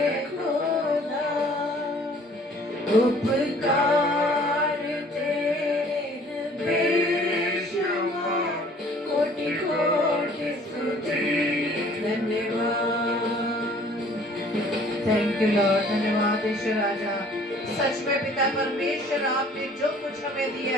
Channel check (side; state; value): both; normal; correlation 0.54